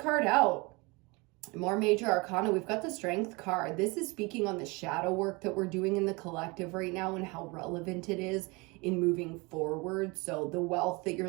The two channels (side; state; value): left; quieter; 26.5 dB